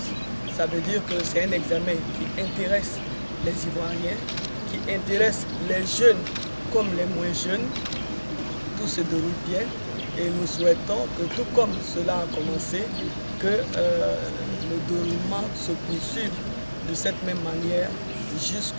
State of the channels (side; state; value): both; inverted; correlation -1.00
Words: ça veut dire que c'est un examen qui intéresse les Ivoiriens, qui intéresse les jeunes comme les moins jeunes. Tout se déroule bien et nous souhaitons que tout comme cela a commencé, que le déroulement se poursuive de cette même manière